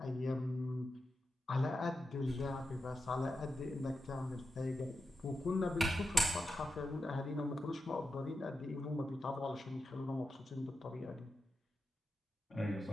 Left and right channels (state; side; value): normal; both; correlation 0.88